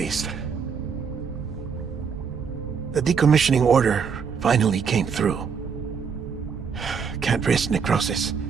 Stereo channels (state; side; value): quieter; left; 6.3 dB